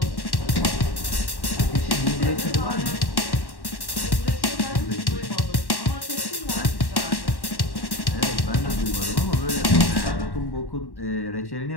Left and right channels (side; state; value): right; late; 1.1 ms